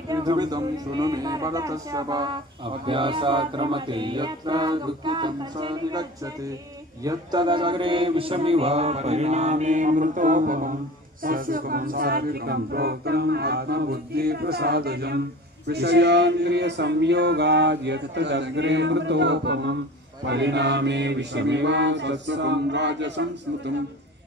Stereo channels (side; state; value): both; normal; correlation 0.37